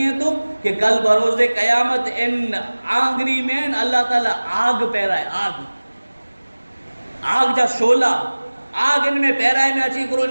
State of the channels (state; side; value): inverted; both; correlation -1.00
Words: ہیں تو کہ کل بروز قیامت ان آنگری میں اللہ تعالیٰ آگ پیرائے آگ جا شولہ آگ ان میں پیرائے میں اچھی کرو